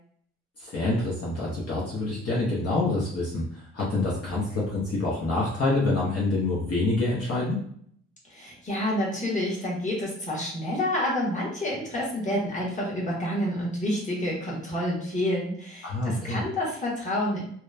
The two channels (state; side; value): normal; both; correlation 0.52